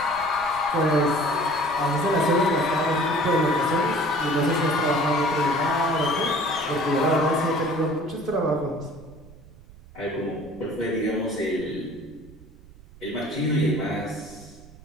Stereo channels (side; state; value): right; noise; rumble, 22 dB below the sound